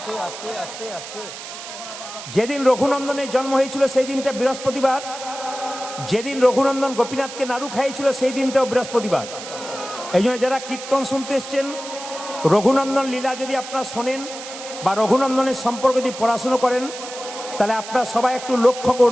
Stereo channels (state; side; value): noise; right; hiss, 11 dB below the sound